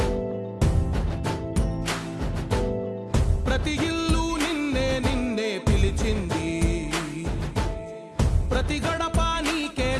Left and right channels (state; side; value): identical; both; correlation 1.00